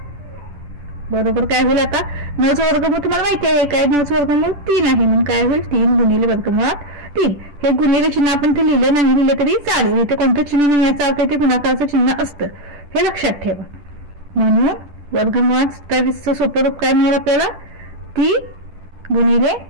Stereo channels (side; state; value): left; late; 10 ms